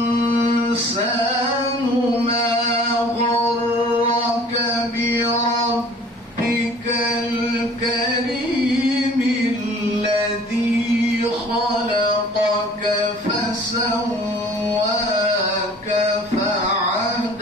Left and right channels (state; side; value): normal; both; correlation 0.50